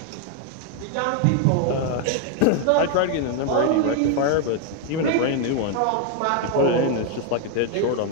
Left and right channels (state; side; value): different; both; correlation 0.00